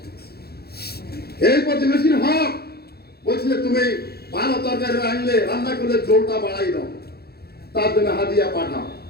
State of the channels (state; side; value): late; right; 0.46 ms